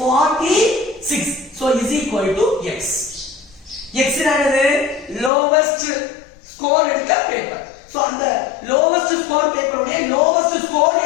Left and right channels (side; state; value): right; drops out; at 5.3 s